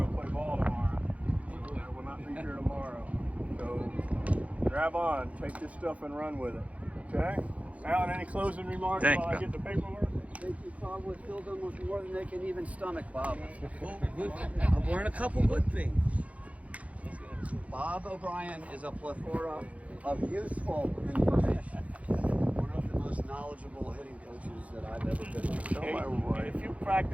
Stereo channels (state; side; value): late; left; 0.066 ms